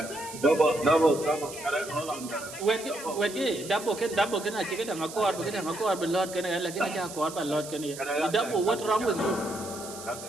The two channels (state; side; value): noise; right; hiss, 13 dB below the sound